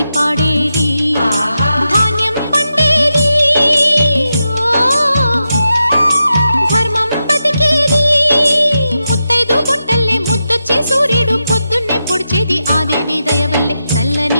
పాడేది ధాన్యం పండేది ధర్మం బతికేది ముత్తైదు బొట్టల్లే ముద్దొచ్చే సూర్యుడు పొద్దున్నే పొడిచేది ఆ దేవి దయవల్లే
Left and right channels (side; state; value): both; inverted; correlation -0.88